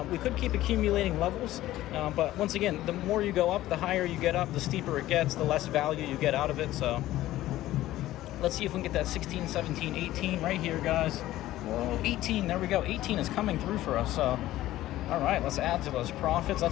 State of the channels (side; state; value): right; quieter; 15.1 dB